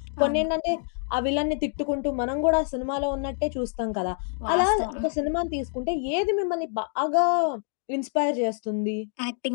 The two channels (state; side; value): silent; right; 61 dB below the other